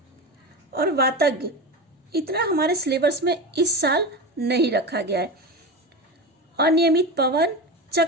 वातज्ञ इतना हमारे सिलेबस में इस साल नहीं रखा गया है। अनियमित पवन,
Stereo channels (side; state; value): both; normal; correlation 0.23